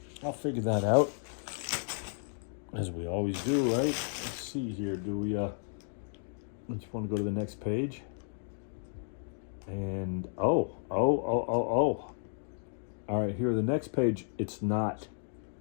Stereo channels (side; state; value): right; silent; digital silence